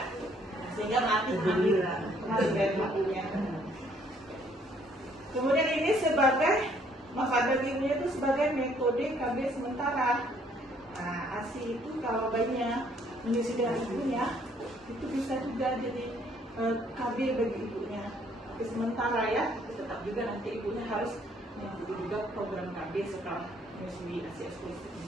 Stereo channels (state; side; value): normal; both; correlation 0.64